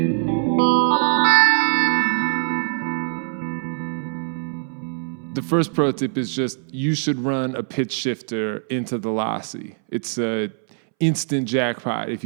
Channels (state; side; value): silent; left; 64 dB below the other